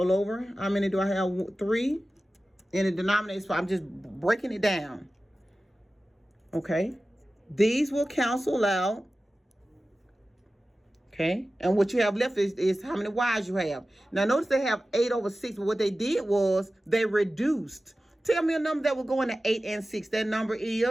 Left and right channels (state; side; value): normal; both; correlation 0.95